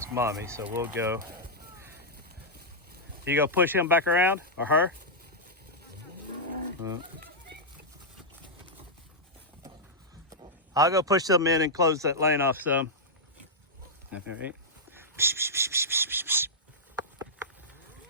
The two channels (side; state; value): both; normal; correlation -0.09